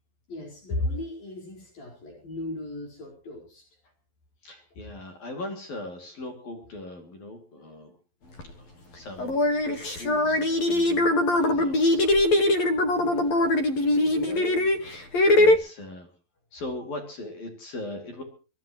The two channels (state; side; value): late; right; 11 ms